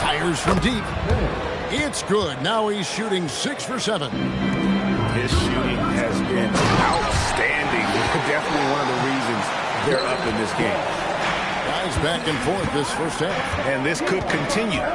from deep. It's good. Now he's shooting 6 for 7. His shooting has been outstanding. Definitely one of the reasons they're up in this game. Guys back and forth this first half. And this could continue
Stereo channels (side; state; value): both; identical; correlation 1.00